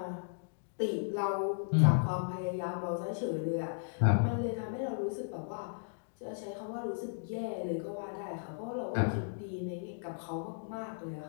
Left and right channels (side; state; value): right; silent; digital silence